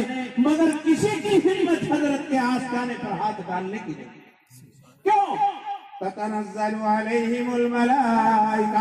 مگر کسی کی ہمت حضرت کے آستانے پر ہاتھ ڈالنے کی نہیں۔ کیوں؟ تتنزل علیہم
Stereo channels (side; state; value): both; identical; correlation 1.00